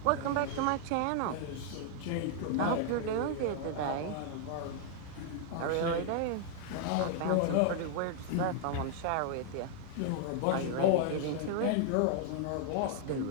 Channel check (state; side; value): different; both; correlation 0.00